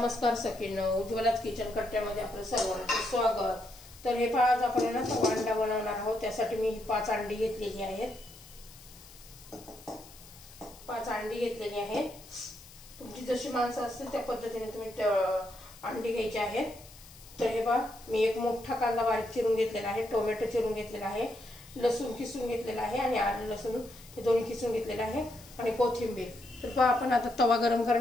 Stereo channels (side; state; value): left; noise; hiss, 21 dB below the sound